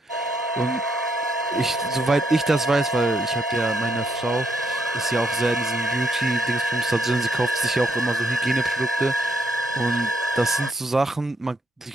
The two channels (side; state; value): both; normal; correlation 0.76